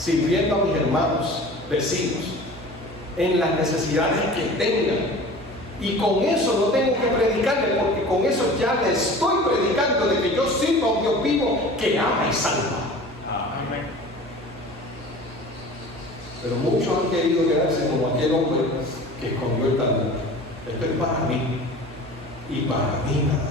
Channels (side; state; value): right; noise; hum, 19 dB below the sound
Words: a mis hermanos, vecinos, en las necesidades que tengan. Y con eso no tengo que predicarle, porque con eso ya le estoy predicando de que yo sirvo a un Dios vivo que ama y salva. Amén. Pero muchos han querido quedarse como aquel hombre que escondió el talento. Esto es para mí y para mí nada